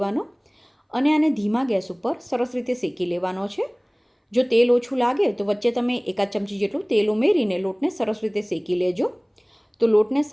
અને આને ધીમા ગેસ ઉપર સરસ રીતે શેકી લેવાનો છે. જો તેલ ઓછું લાગે તો વચ્ચે તમે 1 ચમચી જેટલું તેલ ઉમેરીને લોટને સરસ રીતે શેકી લેજો. તો લોટને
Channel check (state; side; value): identical; both; correlation 1.00